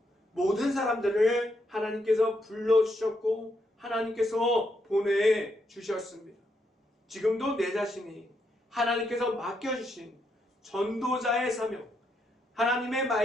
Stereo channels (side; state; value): both; normal; correlation 0.79